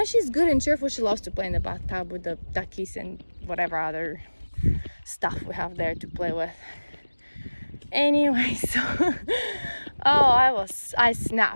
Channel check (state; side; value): inverted; both; correlation -1.00